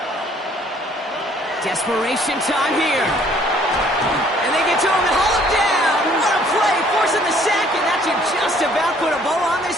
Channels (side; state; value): both; normal; correlation 0.60